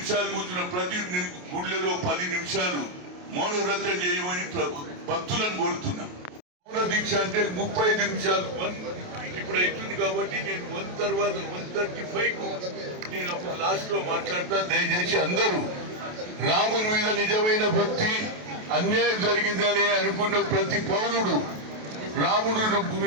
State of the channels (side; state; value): left; late; 28 ms